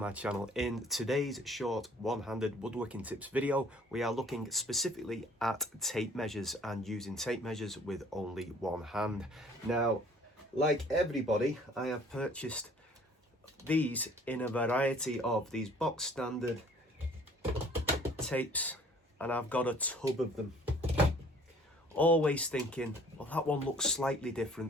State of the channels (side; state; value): both; normal; correlation 0.55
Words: channel. In today's short one-handed woodworking tips video, we are looking specifically at tape measures and using tape measures with only one hand. Now, like everybody, I have purchased these in a variety of these box standard tapes, and I've got a tub of them. Always thinking, well, that one looks slightly